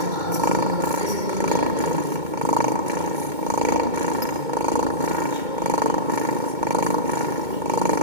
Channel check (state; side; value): late; left; 2.2 ms